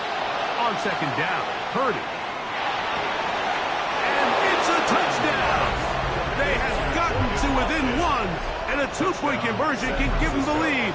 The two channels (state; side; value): identical; both; correlation 1.00